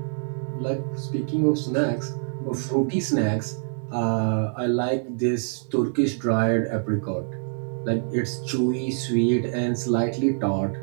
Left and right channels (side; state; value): left; silent; 62 dB below the other